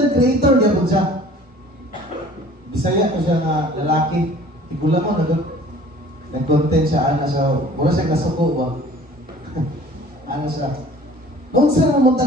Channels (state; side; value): normal; both; correlation 0.49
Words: creator niya po siya. Bisaya ko siya nga lalaki. Tigula mo, nag-content siya, ana siya, mura siya nasuko ba? Ano siya? Kung saan mo